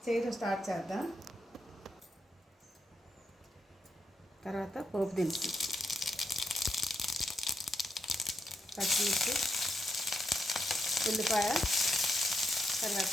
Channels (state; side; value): normal; both; correlation 0.83